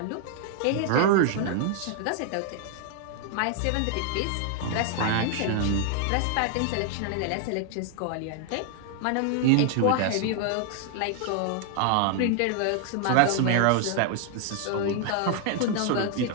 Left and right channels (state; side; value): different; both; correlation 0.00